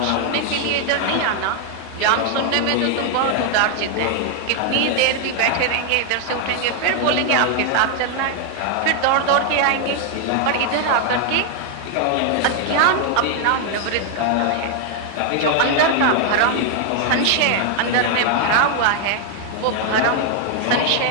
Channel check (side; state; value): both; different; correlation 0.00